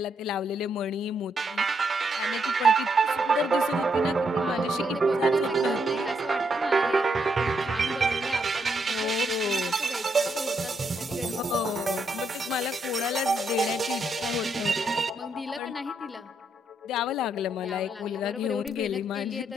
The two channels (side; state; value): both; normal; correlation 0.77